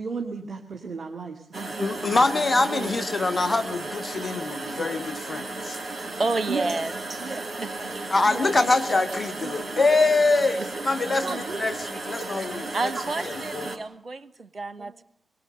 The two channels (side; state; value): both; normal; correlation 0.90